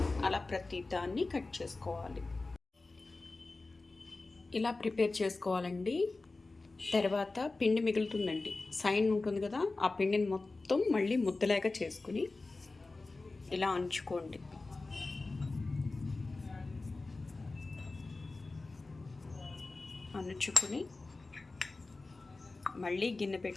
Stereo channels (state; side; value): quieter; right; 3.5 dB